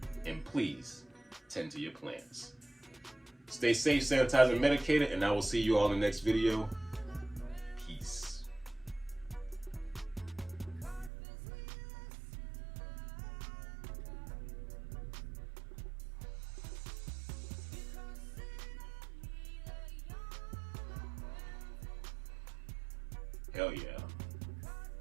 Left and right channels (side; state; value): left; drops out; at 11.1 s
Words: and please tend to your plants. Stay safe, sanitized, and medicated, and I will see you all in the next video. Peace. Hell yeah.